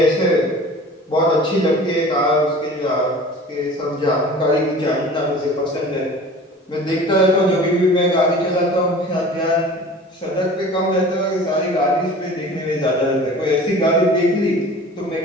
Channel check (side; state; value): both; normal; correlation 0.42